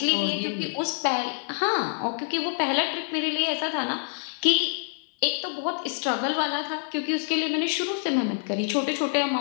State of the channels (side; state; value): right; silent; 61 dB below the other